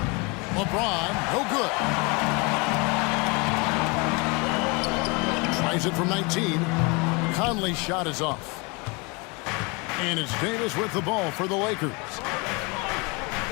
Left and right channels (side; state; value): right; quieter; 28.5 dB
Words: LeBron, no good. Tries it from 19. Conley's shot is off. And it's Davis with the ball for the Lakers.